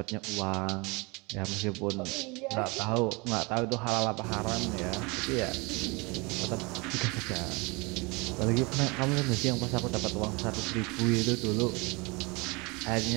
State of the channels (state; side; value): quieter; left; 27.3 dB